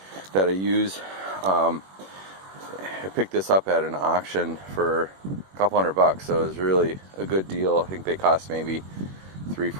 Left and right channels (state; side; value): late; left; 21 ms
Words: that I use. I picked this up at an auction for a couple $100, so it was really a good deal. I think they cost maybe